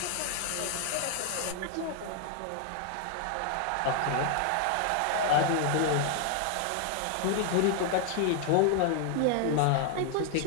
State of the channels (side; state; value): both; different; correlation 0.00